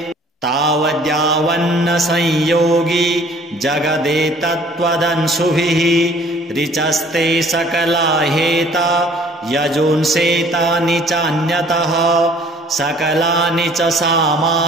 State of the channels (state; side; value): normal; both; correlation 0.54